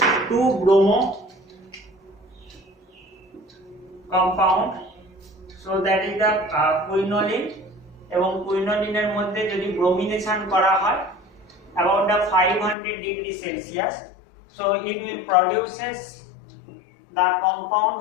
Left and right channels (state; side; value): drops out; right; at 12.8 s